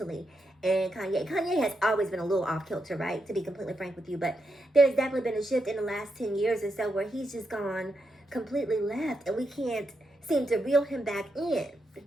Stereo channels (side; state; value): both; normal; correlation 0.83